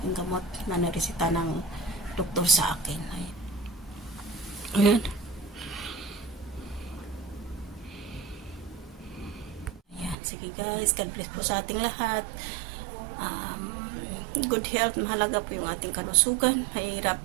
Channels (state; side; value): drops out; left; at 10.2 s